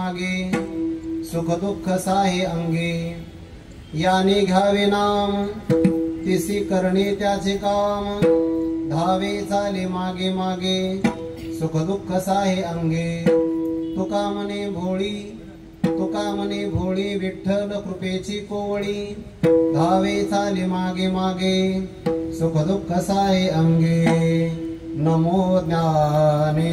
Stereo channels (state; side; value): identical; both; correlation 1.00